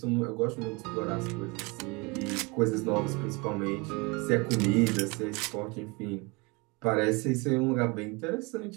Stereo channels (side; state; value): left; quieter; 27.7 dB